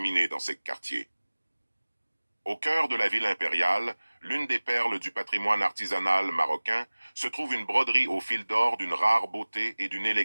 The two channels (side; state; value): both; inverted; correlation -1.00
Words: dans ces quartiers. Au cœur de la ville impériale, l'une des perles du patrimoine artisanal marocain, se trouve une broderie au fil d'or d'une rare beauté et d'une